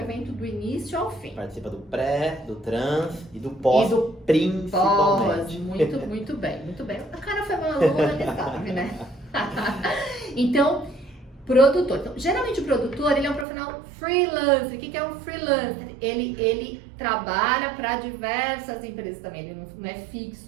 do início ao fim. Participa do pré, do trans e do pós, principalmente. Muito bem, muito bem. O cara foi maluco, ele sabe, né? Então, produtor. Então, geralmente o produtor, ele é um profissional freelancer. O que é um freelancer? Ele trabalha para diversas empresas também, ele não é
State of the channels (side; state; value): left; drops out; at 13.5 s